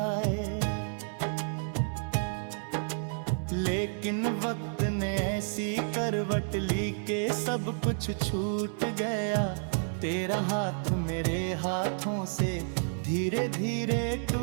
लेकिन वक्त ने ऐसी करवट ली के सब कुछ छूट गया, तेरा हाथ मेरे हाथों से धीरे धीरे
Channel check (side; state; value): left; silent; digital silence